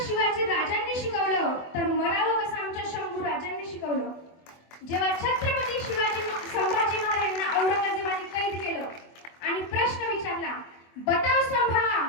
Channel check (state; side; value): late; right; 24 ms